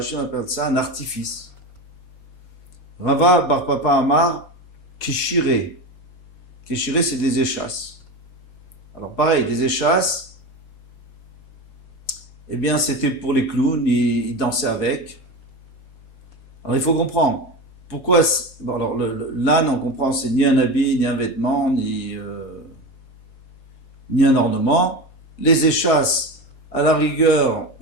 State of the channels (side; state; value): right; late; 4.7 ms